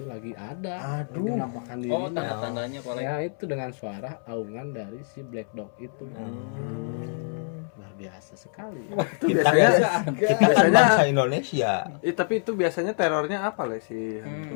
lagi ada. Aduh. Penampakan diri. Oh, tanda-tandanya paling. Ya itu dengan suara aungan dari si black dog itu. Luar biasa sekali. Kita biasanya- kita kan biasanya- bangsa Indonesia. Tapi itu biasanya terornya apa lah si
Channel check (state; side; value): silent; right; 61 dB below the other